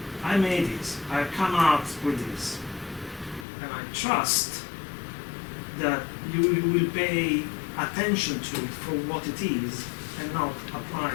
I made this. I come out with this, and I trust that you will pay attention to it for what it is, and not apply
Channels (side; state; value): right; drops out; at 3.5 s